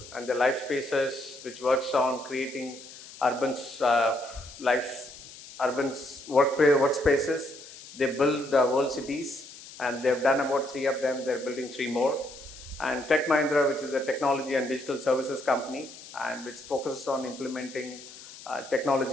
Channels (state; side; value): noise; left; hiss, 17 dB below the sound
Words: and the Life Spaces, which works on creating urban workspaces. They build world cities, and they've done about 3 of them. They're building 3 more. And Tech Mahindra, which is a technology and digital services company, and which focuses on implementing